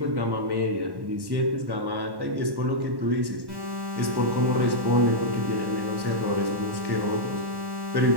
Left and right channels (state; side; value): late; left; 1.1 ms